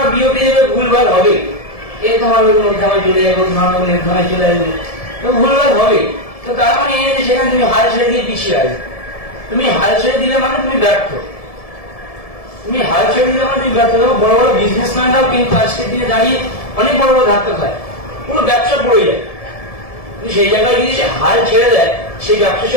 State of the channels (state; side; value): late; right; 1.7 ms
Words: বিওপি দেবে, ভুলভাল হবে, এ তোমার নির্ধারণে চলে যাবে, তোমার নির্ধারণে চলে আসবে, তো ভুলভাল হবে। তো তার মানে এই যে সেখানে তুমি হাল ছেড়ে দিয়ে পিছিয়ে আসবে। তুমি হাল ছেড়ে দিলে মানে তুমি ব্যর্থ। তুমি হাল ছেড়ে দিলে মানে তুমি ব্যর্থ। বড় বড় বিজনেসম্যানরাও কিন্তু আজকের দিনে দাঁড়িয়ে অনেক বড় বড় ধাক্কা খায়, পুরো ব্যবসা পড়ে যায়। সেই জায়গায় যদি সে হাল ছেড়ে দেয়, সেই ব্যবসা সে